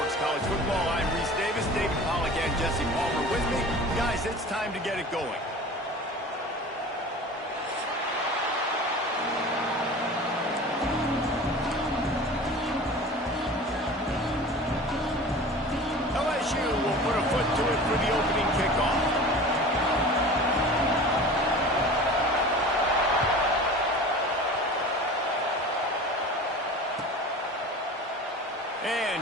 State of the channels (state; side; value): normal; both; correlation 0.38